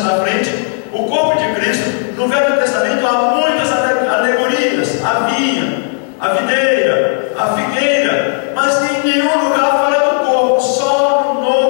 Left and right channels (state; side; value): silent; right; digital silence